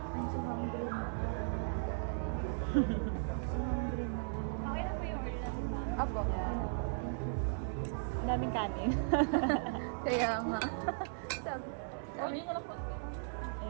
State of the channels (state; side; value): silent; left; digital silence